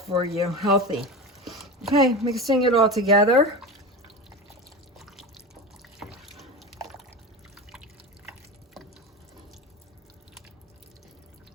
you. Healthy. Okay, mixing it all together.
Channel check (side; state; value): both; normal; correlation 0.26